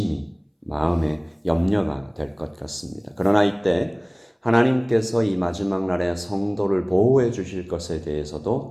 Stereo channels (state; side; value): identical; both; correlation 1.00